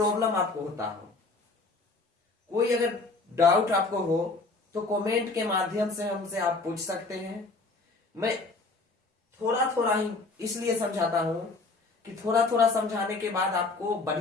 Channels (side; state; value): right; quieter; 3.6 dB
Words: आपको होता हो, कोई अगर डाउट आपको हो, तो कमेंट के माध्यम से हमसे आप पूछ सकते हैं। मैं थोड़ा थोड़ा ही इसलिए समझाता हूं कि थोड़ा थोड़ा समझाने के बाद आपको